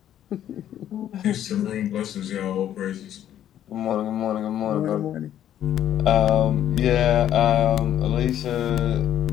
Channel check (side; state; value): right; quieter; 11.0 dB